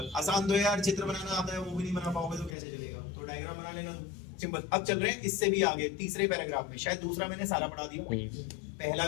आसान तो है यार, चित्र बनाना आता है वो भी नहीं बना पाओगे तो कैसे चलेगा, तो डायग्राम बना लेना तुम। सिंपल। अब चल रहे हैं इससे भी आगे तीसरे पैराग्राफ में, शायद दूसरा मैंने सारा पढ़ा दिया, पहला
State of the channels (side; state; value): right; drops out; at 2.6 s